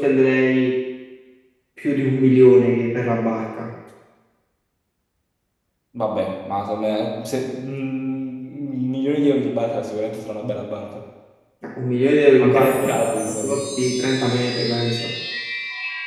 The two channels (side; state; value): both; identical; correlation 1.00